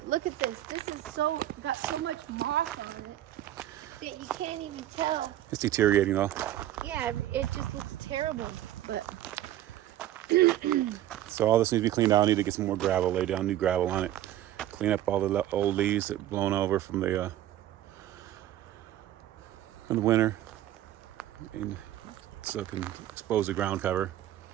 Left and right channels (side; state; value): left; quieter; 13.0 dB